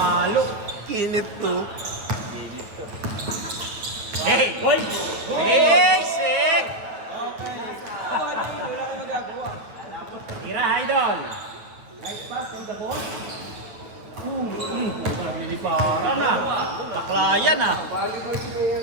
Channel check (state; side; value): late; left; 9.1 ms